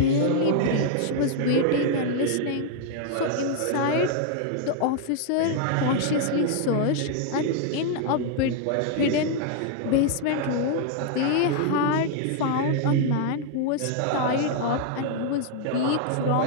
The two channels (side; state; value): both; different; correlation 0.00